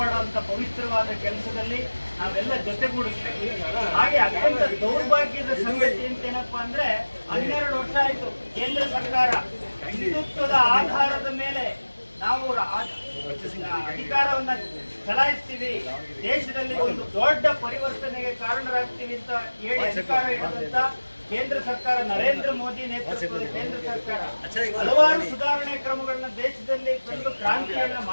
ಪವಿತ್ರವಾದ ಕೆಲಸದಲ್ಲಿ ನಾವೆಲ್ಲ ಜೊತೆಗೂಡಿಸ್ಬೇಕು. ಹಾಗೆ ಅತ್ಯಂತ ದೌರ್ಭಾಗ್ಯದ ಸಂಗತಿ ಅಂತ ಏನಪ್ಪಾ ಅಂದ್ರೆ, 12 ವರ್ಷ ಆಯ್ತು ಕೇಂದ್ರ ಸರ್ಕಾರ ಹಿಂದುತ್ವದ ಆಧಾರದ ಮೇಲೆ ನಾವು ಅಧಿಕಾರವನ್ನ ಚಲಾಯಿಸ್ತೀವಿ, ದೇಶದಲ್ಲಿ ಒಂದು ದೊಡ್ಡ ಪರಿವರ್ತನೆಗೆ ಕಾರಣರಾಗ್ತೀವಿ ಅಂತ ಹೇಳಿ ಅಧಿಕಾರ ಇರುವಂತ ಕೇಂದ್ರ ಸರ್ಕಾರ, ನರೇಂದ್ರ ಮೋದಿ ನೇತೃತ್ವದ ಕೇಂದ್ರ ಸರ್ಕಾರ ಹಲವಾರು ಸುಧಾರಣೆ ಕ್ರಮಗಳನ್ನ ದೇಶದಲ್ಲಿ ತಂದು ಕ್ರಾಂತಿಯನ್ನ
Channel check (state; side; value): inverted; both; correlation -1.00